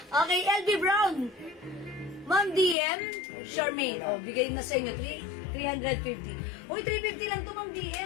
Okay, LV Brown. Ma'am DM, Charmaine. O, bigay na sa inyo. 350. Uy, 350 lang to, Ma'am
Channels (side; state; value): right; drops out; at 2.8 s